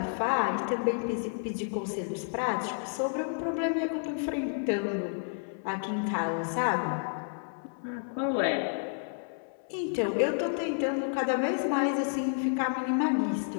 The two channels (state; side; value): silent; right; 57 dB below the other